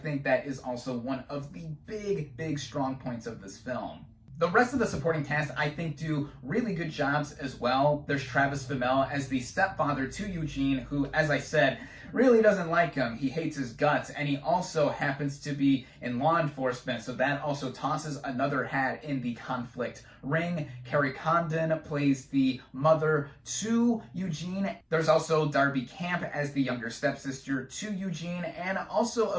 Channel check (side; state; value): both; identical; correlation 1.00